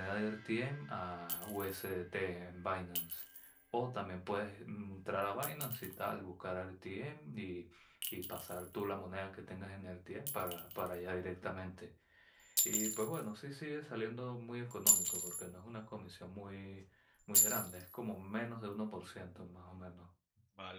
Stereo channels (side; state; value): both; identical; correlation 1.00